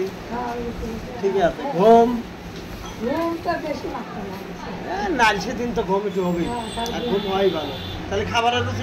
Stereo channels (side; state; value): both; identical; correlation 1.00